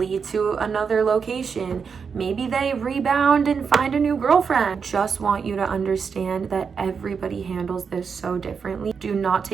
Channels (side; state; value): left; quieter; 6.0 dB